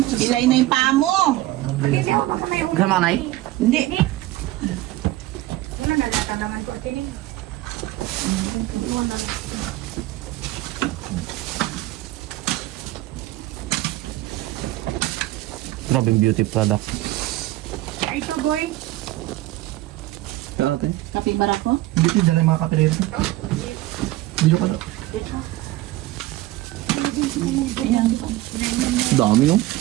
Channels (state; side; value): quieter; left; 16.9 dB